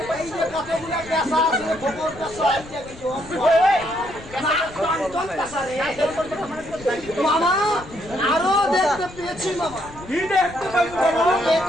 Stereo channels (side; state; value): left; noise; rumble, 18 dB below the sound